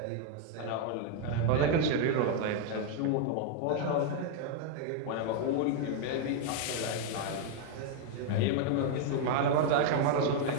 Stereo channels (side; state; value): both; different; correlation 0.00